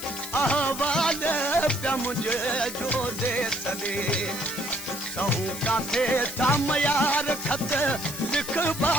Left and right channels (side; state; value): left; noise; hiss, 10 dB below the sound